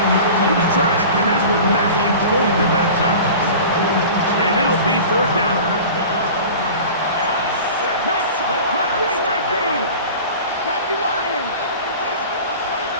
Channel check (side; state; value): both; inverted; correlation -0.38